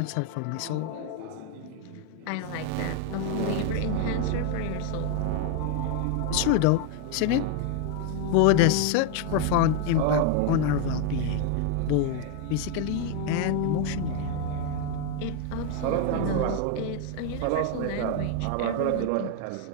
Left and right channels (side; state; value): both; different; correlation 0.01